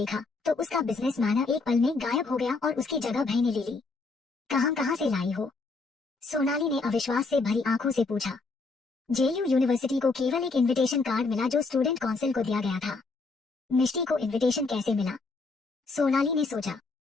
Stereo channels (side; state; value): right; quieter; 3.9 dB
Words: तो उसका बिजनेस मैनर एक पल में गायब हो गया और उसकी जगह भय ने ले ली। कहाँ से लाई हो? सोनाली ने अविश्वास से भरी आंखों से पूछा। जेयू यूनिवर्सिटी को केवल एक इनविटेशन कार्ड मिला जो स्टूडेंट काउंसिल को दिया गया था। मिष्टी को इनविटेशन कैसे मिला? सोनाली ने सोचा।